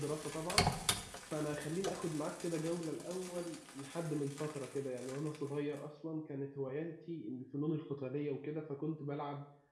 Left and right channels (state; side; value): identical; both; correlation 1.00